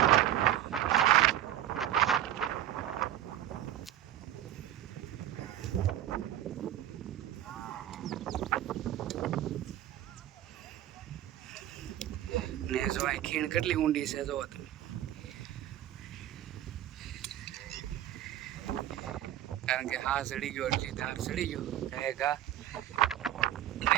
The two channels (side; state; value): left; quieter; 12.4 dB